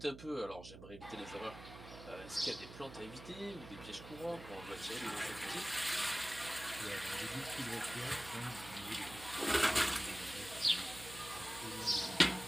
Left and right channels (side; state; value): right; noise; hum, 14 dB below the sound